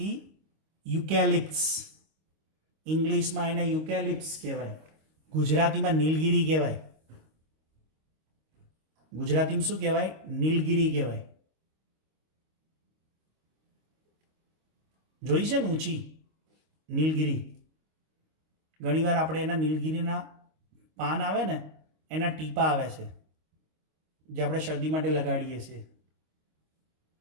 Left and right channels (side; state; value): left; late; 25 ms